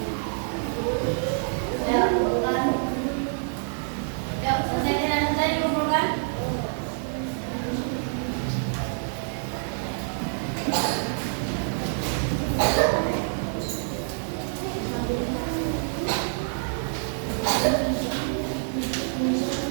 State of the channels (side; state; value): left; silent; 59 dB below the other